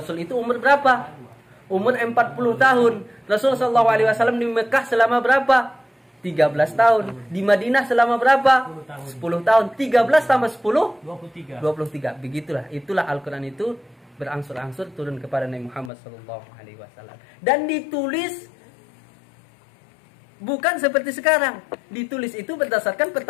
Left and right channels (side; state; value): right; drops out; at 15.9 s